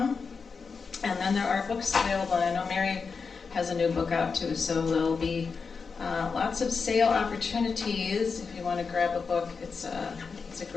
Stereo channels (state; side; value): quieter; right; 5.1 dB